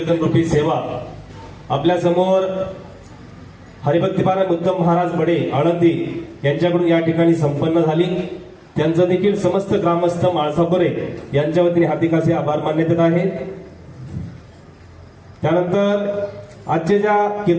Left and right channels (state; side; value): identical; both; correlation 1.00